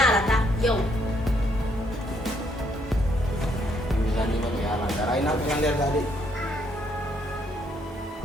ta yo. Ina belanda tadi.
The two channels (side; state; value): both; normal; correlation 0.71